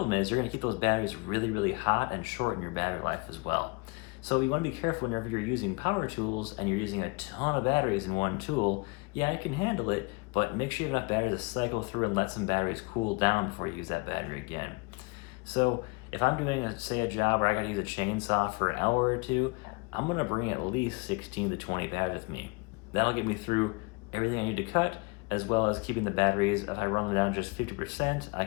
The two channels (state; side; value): quieter; right; 28.6 dB